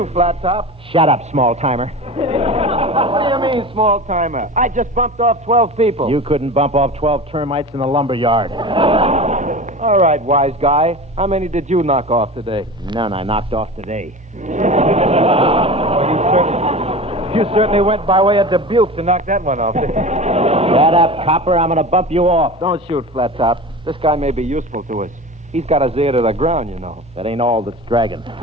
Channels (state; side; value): normal; both; correlation 0.32